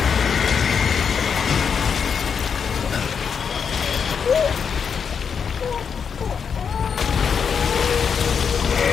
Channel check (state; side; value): quieter; right; 6.6 dB